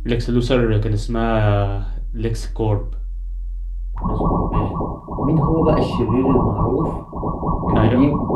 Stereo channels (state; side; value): identical; both; correlation 1.00